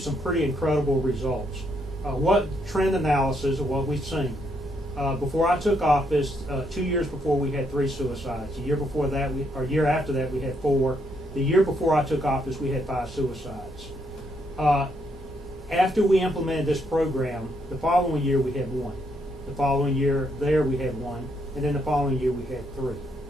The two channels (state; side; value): normal; both; correlation 0.75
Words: pretty incredible results. What trend analysis of what we've seen. Before I took office, 2 years before, we had 3 suicides. The year before that, year after that, we had 4. The year before I took office, we had 5 suicides. After we implemented this program, the following year we had 1. The following year we had 1, and then the following year we had 3.